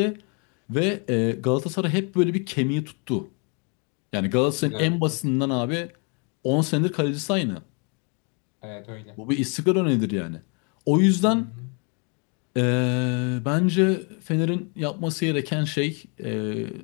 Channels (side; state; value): right; quieter; 35.8 dB